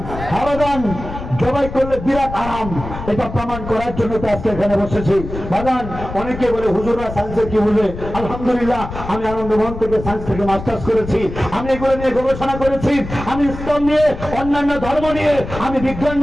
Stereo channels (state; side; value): noise; left; rumble, 10 dB below the sound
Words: হারাদান জবাই করলে বিরাট আরাম, এটা প্রমাণ করার জন্য তো আজকে এখানে বসেছি। বাগান অনেকে বলে হুজুররা সায়েন্সের কি বুঝে? আলহামদুলিল্লাহ আমি আনন্দমোহন থেকে সায়েন্স থেকে মাস্টার্স করেছি, আমি এগুলো নিয়ে গবেষণা করেছি, আমি ইসলাম নিয়ে অন্যান্য ধর্ম নিয়ে আমি বিজ্ঞান